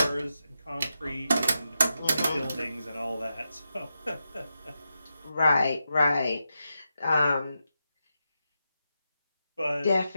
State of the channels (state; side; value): inverted; both; correlation -0.88